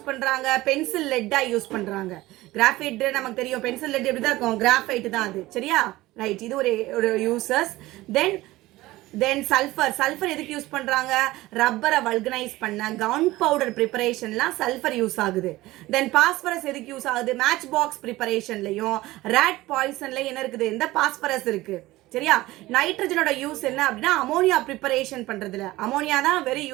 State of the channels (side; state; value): left; quieter; 18.2 dB